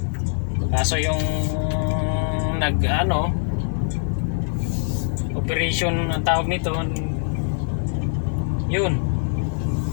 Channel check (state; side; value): silent; right; digital silence